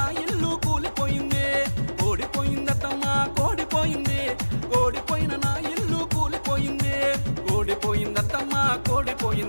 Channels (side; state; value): both; inverted; correlation -1.00